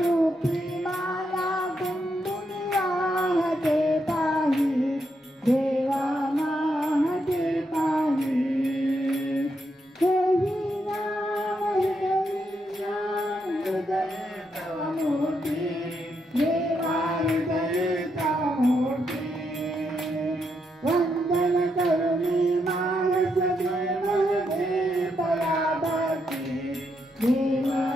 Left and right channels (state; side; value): normal; both; correlation 0.80